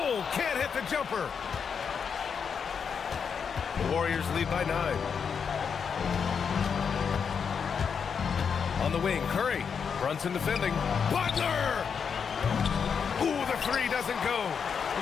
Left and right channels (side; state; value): right; quieter; 6.5 dB